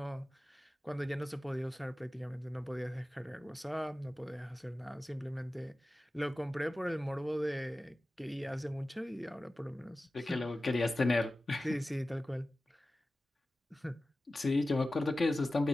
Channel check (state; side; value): normal; both; correlation 0.95